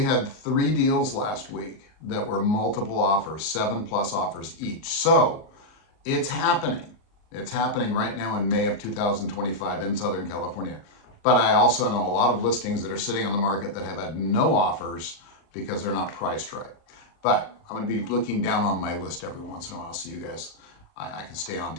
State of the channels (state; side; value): late; right; 39 ms